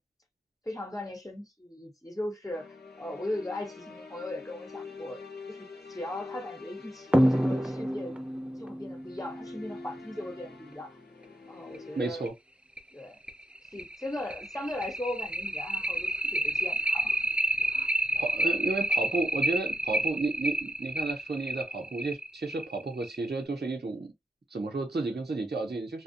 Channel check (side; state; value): both; normal; correlation 0.79